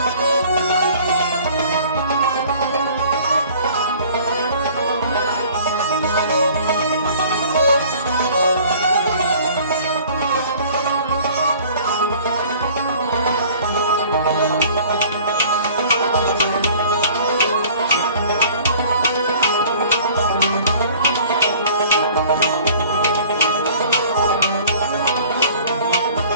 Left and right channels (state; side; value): inverted; both; correlation -0.50